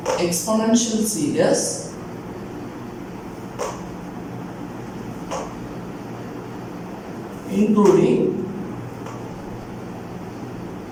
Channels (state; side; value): identical; both; correlation 1.00